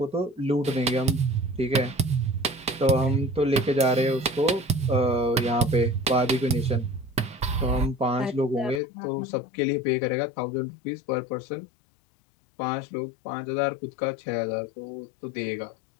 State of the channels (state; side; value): drops out; right; at 8.8 s